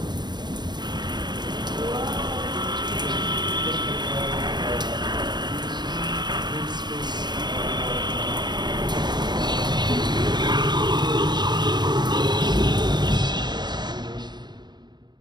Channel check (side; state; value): left; late; 0.21 ms